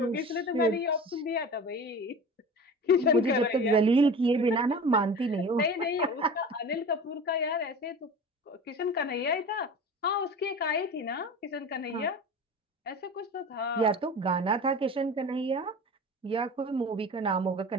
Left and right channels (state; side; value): normal; both; correlation 0.35